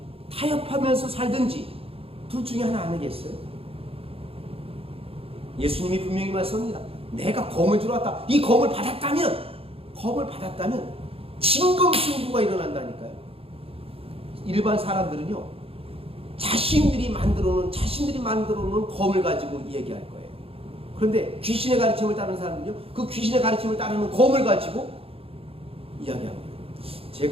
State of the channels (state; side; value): late; left; 0.27 ms